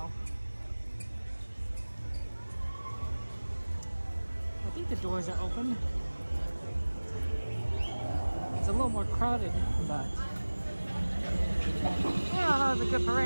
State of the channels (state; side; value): inverted; both; correlation -1.00